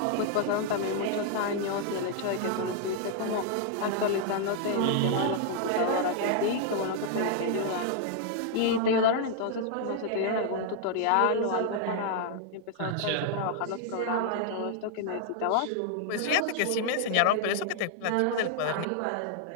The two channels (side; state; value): both; different; correlation 0.00